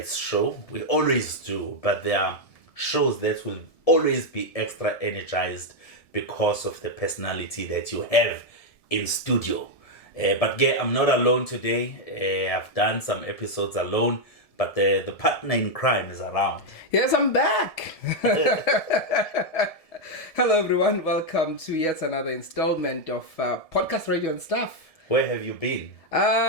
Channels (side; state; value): right; late; 1.7 ms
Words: show. We always do, but there are shows that will always be extra energized because of the personality that you have in studio. But I'm not alone today. I've done some episodes alone, but the partner in crime is around. Yes, I'm back. Hello, everyone. Welcome to yet another installment of Podcast Radio and Stuff. Where have you been?